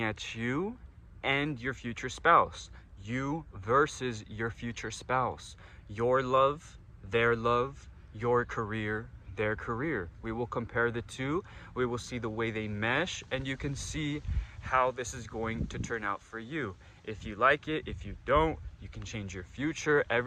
at you and your future spouse. You versus your future spouse. Your love, your career, their career. We will compare the two. We will see the way they mesh, and you can see how this is going to turn out for you. If you like it, if you don't, you can change your future.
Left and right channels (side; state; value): both; identical; correlation 1.00